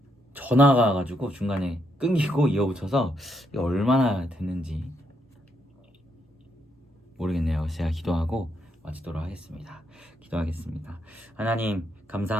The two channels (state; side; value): normal; both; correlation 0.77